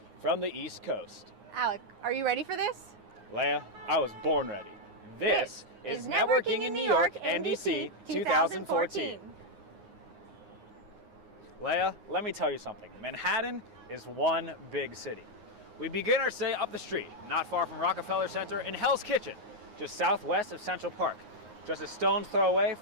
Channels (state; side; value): late; left; 9.6 ms